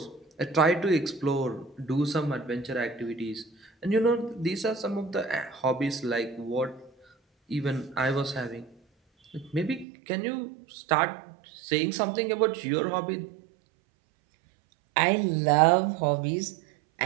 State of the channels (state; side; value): drops out; left; at 9.9 s